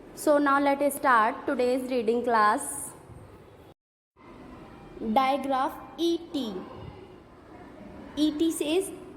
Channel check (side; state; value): both; identical; correlation 1.00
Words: So now let us start today's reading class. Digraph ET. ET says